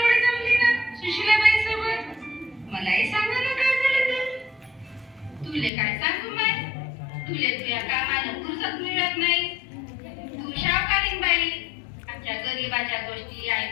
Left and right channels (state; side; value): drops out; right; at 5.7 s